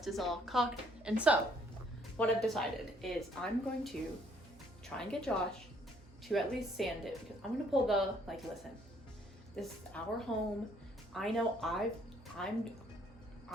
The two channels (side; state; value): both; normal; correlation 0.65